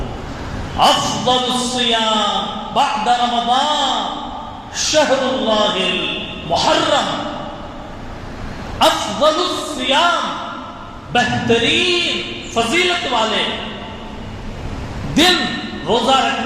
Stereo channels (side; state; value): both; identical; correlation 1.00